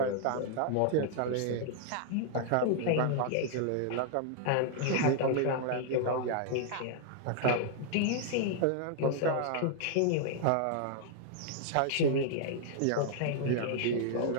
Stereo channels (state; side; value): different; both; correlation -0.01